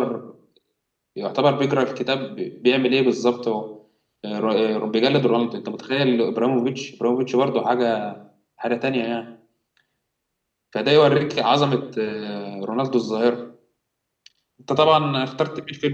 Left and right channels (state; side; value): identical; both; correlation 1.00